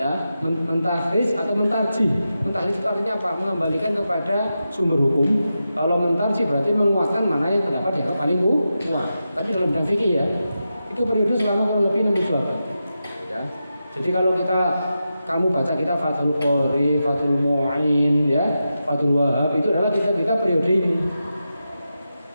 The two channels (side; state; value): both; inverted; correlation -0.90